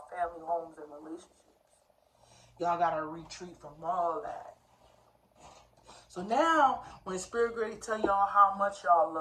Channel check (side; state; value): both; identical; correlation 1.00